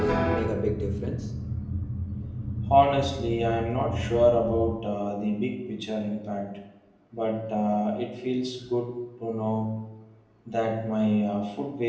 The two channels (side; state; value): both; identical; correlation 1.00